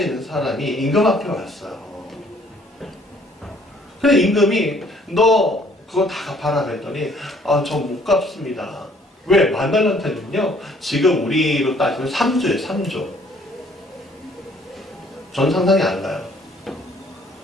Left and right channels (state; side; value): normal; both; correlation 0.60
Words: 사람이 임금 앞에 왔어요. 근데 임금이 너 그거 다 갚아라 그랬더니 저 못 갚습니다. 왜? 10,000달란트는요 지금 우리로 따지면 3조예요. 3조. 전 상상이 안 가요.